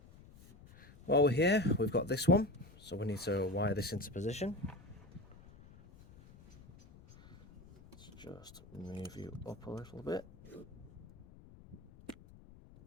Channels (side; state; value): left; noise; rumble, 21 dB below the sound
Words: While we're here, we've got this one, so we need to wire this into position. Let's just move you up a little bit so